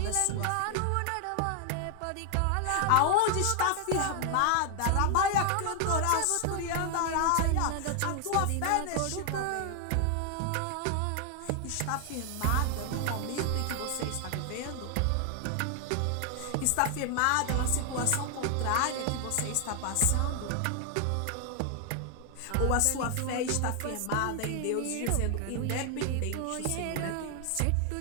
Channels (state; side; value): different; both; correlation 0.00